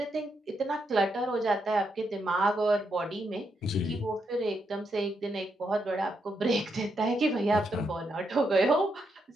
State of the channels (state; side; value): normal; both; correlation 0.80